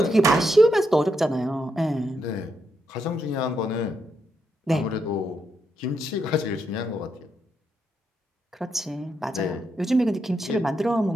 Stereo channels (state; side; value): normal; both; correlation 0.81